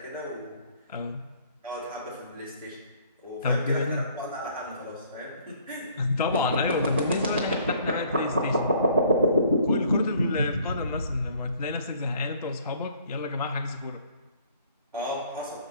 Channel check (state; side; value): inverted; both; correlation -0.59